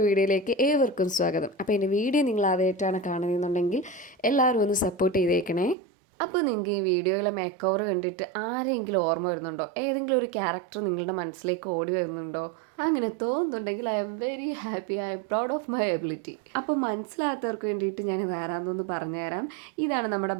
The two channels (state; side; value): drops out; left; at 5.8 s